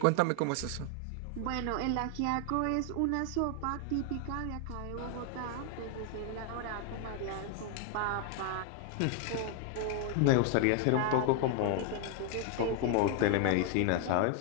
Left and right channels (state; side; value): different; both; correlation 0.00